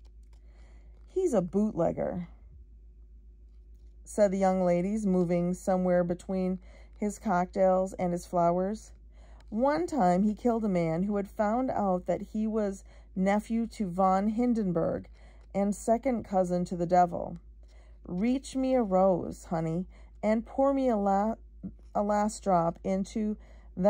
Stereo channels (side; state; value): both; identical; correlation 1.00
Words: "He's a bootlegger," said the young ladies, moving somewhere between his cocktails and his flowers. "One time he killed a man who had found out that he was nephew to von Hindenburg and second cousin to the devil. Reach me a rose, honey, and pour me a last drop into